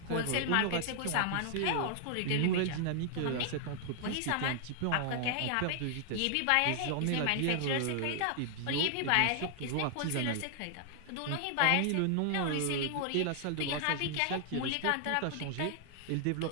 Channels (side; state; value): both; different; correlation 0.00